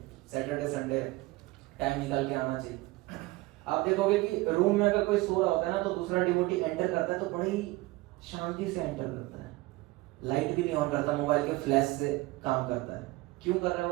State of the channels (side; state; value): left; quieter; 20.6 dB